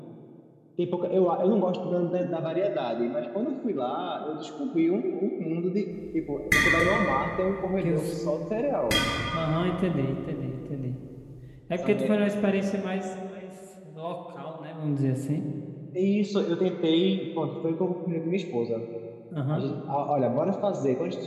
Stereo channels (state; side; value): identical; both; correlation 1.00